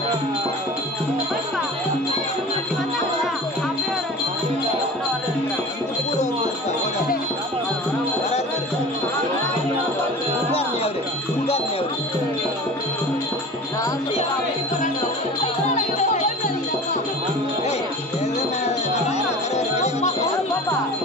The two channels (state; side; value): normal; both; correlation 0.37